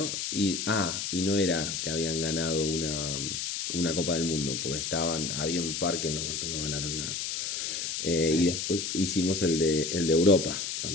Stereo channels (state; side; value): noise; left; hiss, 3 dB below the sound